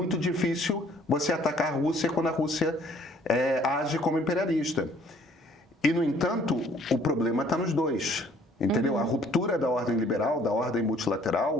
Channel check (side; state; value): both; normal; correlation 0.59